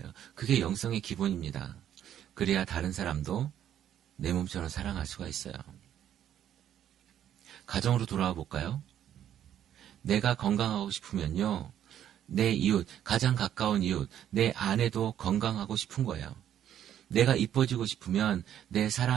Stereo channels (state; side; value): quieter; left; 10.5 dB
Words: 그게 영성의 기본입니다. 그래야 다른 사람도 내 몸처럼 사랑할 수가 있어요. 가정으로 돌아와 볼까요? 내가 건강하고 싶으면요, 내 이웃, 가장 가까운 이웃, 내 아내도 건강하고 싶은 거예요. 내가 이뻐지고 싶으면 내